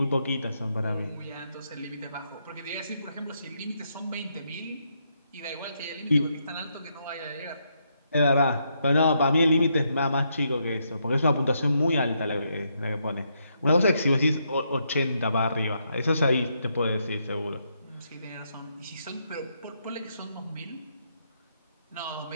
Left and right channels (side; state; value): both; inverted; correlation -0.78